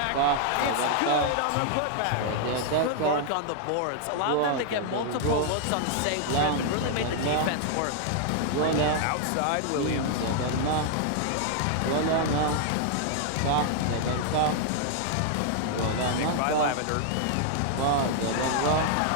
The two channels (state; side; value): different; both; correlation 0.00